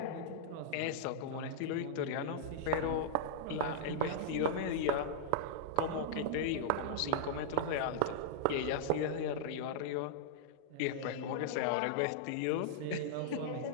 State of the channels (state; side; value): different; both; correlation -0.01